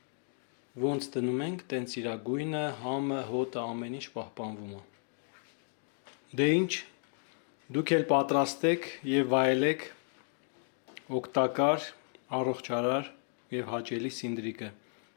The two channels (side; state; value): right; silent; 56 dB below the other